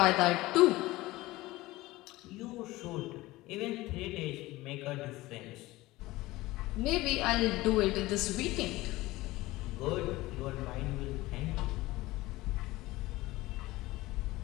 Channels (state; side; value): quieter; right; 19.0 dB